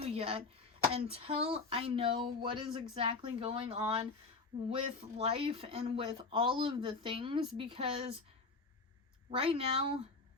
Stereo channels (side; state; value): right; quieter; 4.0 dB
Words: yet until I know what is exactly going on with life and with all of the things, because right now